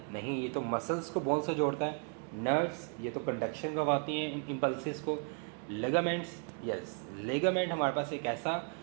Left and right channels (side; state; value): left; quieter; 39.5 dB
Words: नहीं, ये तो मसल्स को बोन से जोड़ता है। नर्व्स, ये तो कंडक्शन करवाती हैं इम्पल्सिस को। लेगामेंट्स, यस, लेगामेंट हमारे पास एक ऐसा